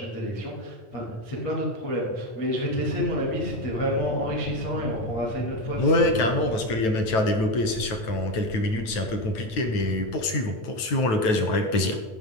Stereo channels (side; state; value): right; late; 9.2 ms